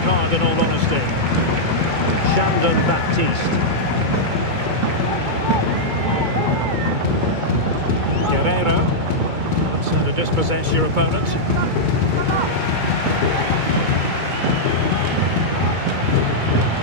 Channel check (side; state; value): left; late; 2.3 ms